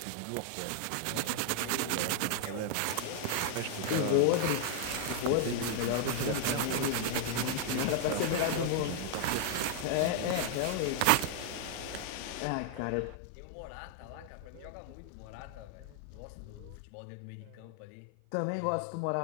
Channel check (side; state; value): both; different; correlation 0.00